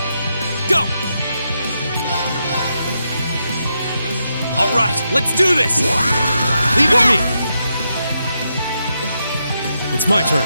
Go! All right, let's do this! Leave it to me. It's my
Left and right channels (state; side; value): inverted; both; correlation -0.83